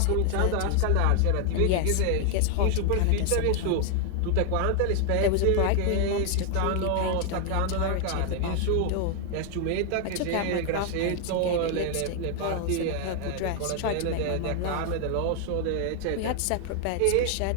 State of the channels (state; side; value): different; both; correlation 0.00